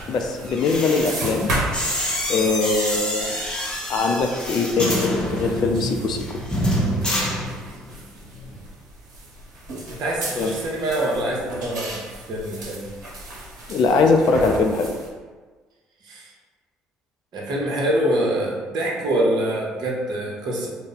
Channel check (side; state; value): both; normal; correlation 0.56